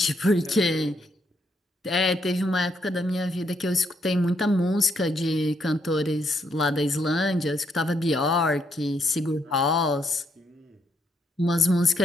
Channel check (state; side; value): normal; both; correlation 0.75